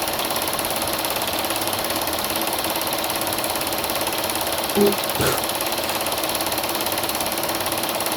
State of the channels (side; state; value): both; identical; correlation 1.00